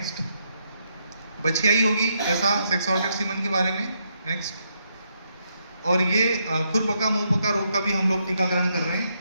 बछियाई होगी, ऐसा सेक्स ऑर्गेट सीमन के बारे में। नेक्स्ट, और ये खुरपका मुंहपका रोग का भी हम लोग टीकाकरण कर रहे हैं।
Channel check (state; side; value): inverted; both; correlation -0.78